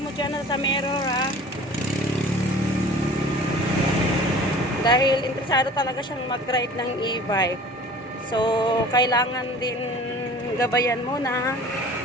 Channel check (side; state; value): both; normal; correlation 0.44